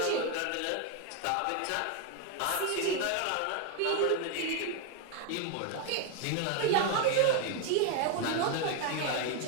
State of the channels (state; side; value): different; both; correlation 0.00